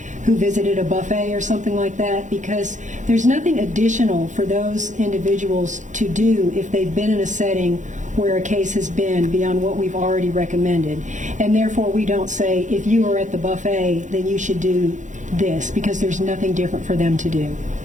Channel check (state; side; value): late; left; 0.36 ms